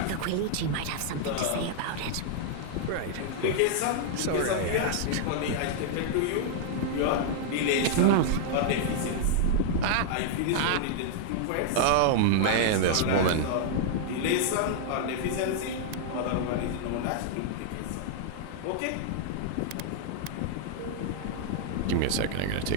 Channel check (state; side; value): different; both; correlation -0.01